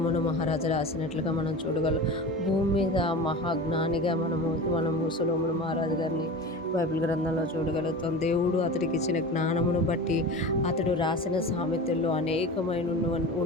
మహారాజు రాసినట్లుగా మనం చూడగలం. భూమి మీద మహాజ్ఞానిగా మనము సొలొమోను మహారాజు గారిని బైబిల్ గ్రంథంలో చూడగలుగుతాం. దేవుడు అతడికి ఇచ్చిన జ్ఞానమును బట్టి అతడు రాసిన సామెతల్లో అనేకమైన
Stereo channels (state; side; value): normal; both; correlation 0.31